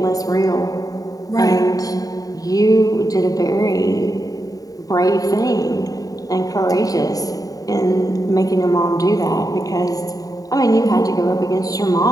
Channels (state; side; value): late; right; 0.18 ms